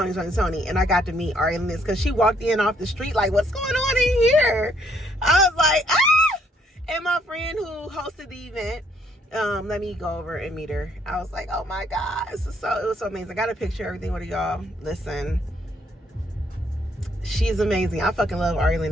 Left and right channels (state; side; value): normal; both; correlation 0.68